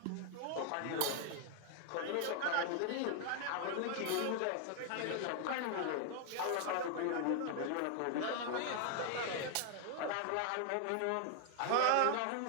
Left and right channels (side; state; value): both; different; correlation 0.00